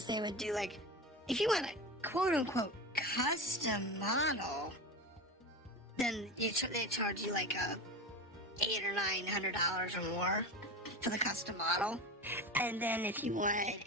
they would do like, if you want a quote unquote custom model, then they charge you like $800 or $900 or more for the custom model. And then if you wanted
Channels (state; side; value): normal; both; correlation 0.25